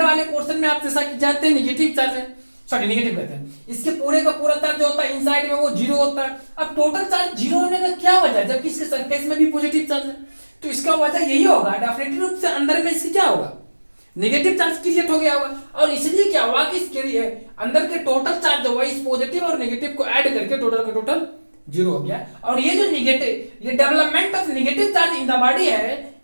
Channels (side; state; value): both; inverted; correlation -1.00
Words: वाले पोर्शन में आप जैसा कि जानते हैं नेगेटिव चार्ज है, सॉरी नेगेटिव कहते हैं, इसके पूरे का पूरा चार्ज जो होता है इनसाइड में वो जीरो होता है। अब टोटल चार्ज जीरो होने का क्या वजह है, जबकि इसके सरफेस में भी पॉजिटिव चार्ज है, तो इसका वजह यही होगा डेफिनेटली रूप से अंदर में इसके क्या होगा, नेगेटिव चार्ज क्रिएट हो गया होगा, और इसलिए क्या हुआ कि इसके अंदर के टोटल चार्ज जो हुआ इस पॉजिटिव और नेगेटिव को ऐड करके टोटल का टोटल 0 हो गया। और ये जो नेगेटिव, ये development of negative charge in the body है,